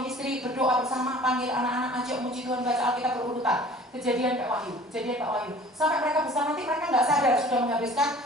istri berdoa bersama, panggil anak-anak, ajak muji Tuhan, baca Alkitab berurutan. Kejadian Pak Wahyu. Sampai mereka besar nanti mereka nggak sadar sudah menghabiskan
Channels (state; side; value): normal; both; correlation 0.47